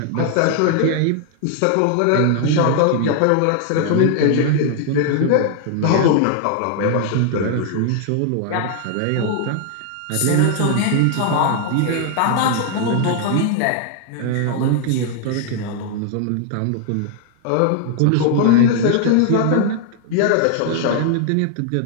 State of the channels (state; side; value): different; both; correlation 0.00